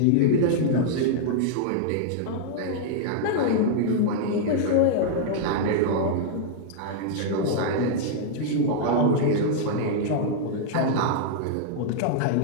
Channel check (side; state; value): both; different; correlation -0.01